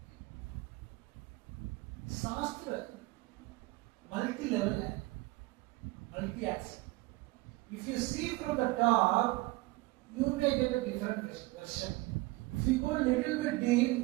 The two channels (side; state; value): left; quieter; 21.4 dB